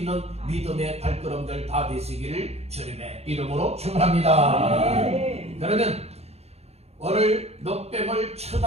믿음의 발걸음들 다 되시기를 주님의 이름으로 축원합니다. 그러면 오늘 놋뱀을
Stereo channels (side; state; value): left; late; 0.30 ms